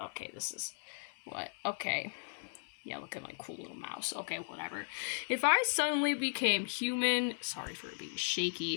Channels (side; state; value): right; silent; 53 dB below the other